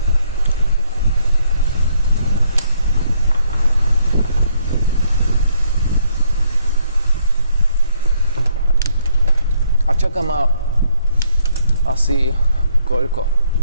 čaká ma asi koľko?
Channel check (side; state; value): both; inverted; correlation -0.70